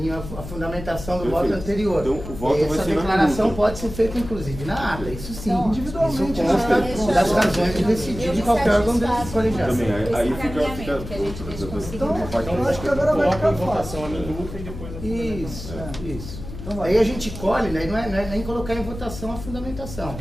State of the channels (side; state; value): left; noise; hum, 10 dB below the sound